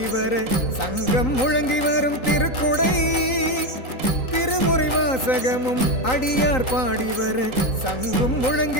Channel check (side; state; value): right; late; 3.9 ms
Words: வர சங்கம் முழங்கி வரும் திருக்குடை. திருமுறை வாசகமும் அடியார் பாடி வர சங்கும்